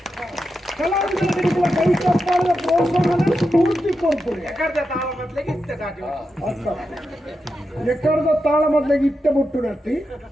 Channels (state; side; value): normal; both; correlation 0.88